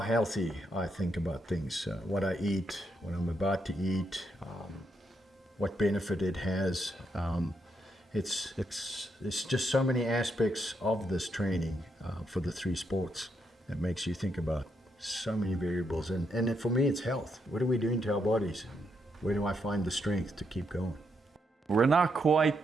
I think about things, what I eat, what I'm about to eat, what benefit it has. It's just so many aspects of this training for the three sports that makes you think about so many variables. And for me, it's health. What are we doing to our bodies? Where do I find the strength to keep going? We're not quite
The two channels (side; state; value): both; normal; correlation 0.79